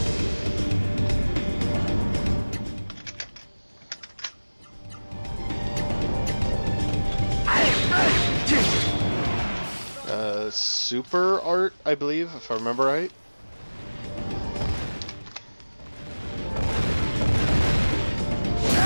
Super art, I believe, if I remember right.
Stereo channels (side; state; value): both; inverted; correlation -1.00